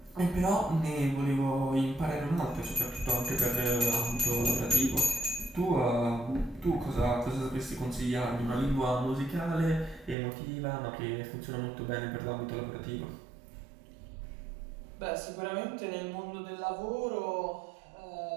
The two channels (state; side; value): drops out; left; at 10.2 s